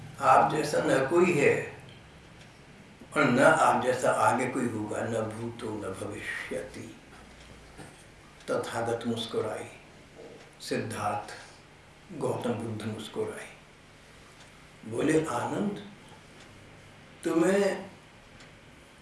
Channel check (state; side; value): identical; both; correlation 1.00